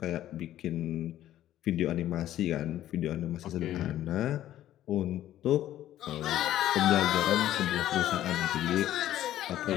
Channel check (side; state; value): right; quieter; 12.9 dB